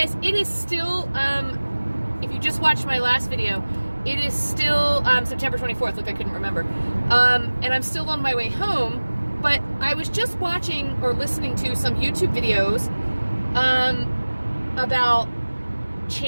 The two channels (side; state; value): both; inverted; correlation -1.00